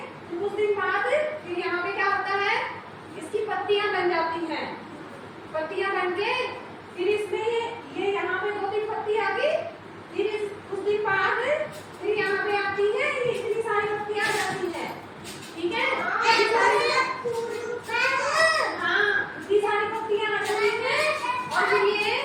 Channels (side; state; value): both; identical; correlation 1.00